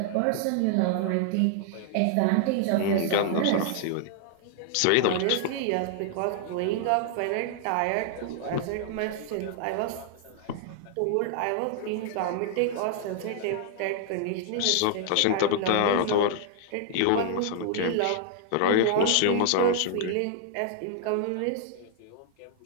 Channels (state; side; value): different; both; correlation -0.01